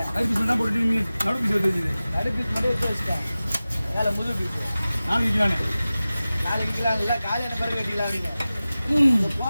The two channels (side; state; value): both; inverted; correlation -0.96